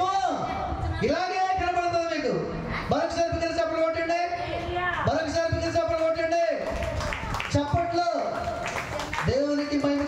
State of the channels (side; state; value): both; identical; correlation 1.00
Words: ఇలాగే కనపడుతుంది మీకు. మరొకసారి పిల్లలు చప్పలు కొట్టండి, మరొకసారి పిల్లలు చప్పలు కొట్టండి. చప్పట్లో దేవునికి మహిమ